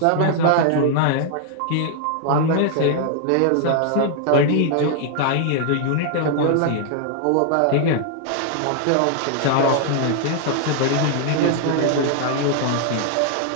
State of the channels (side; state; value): both; different; correlation -0.01